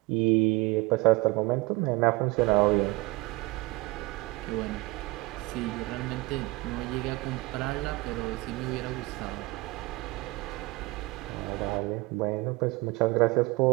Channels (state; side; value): quieter; left; 22.3 dB